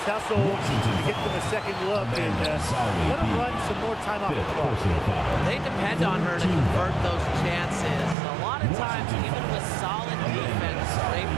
hustle to get them a second look and let them run some more time off the 5th clock. personal foul. They depend on her to convert those chances. A lot of times, even with solid defense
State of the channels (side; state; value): left; drops out; at 8.2 s